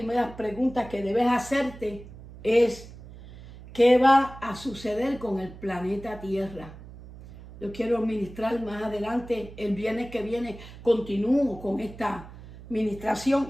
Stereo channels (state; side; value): noise; right; hum, 16 dB below the sound